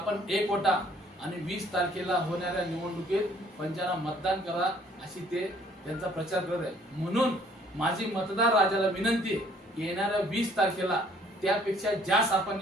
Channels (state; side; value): normal; both; correlation 0.60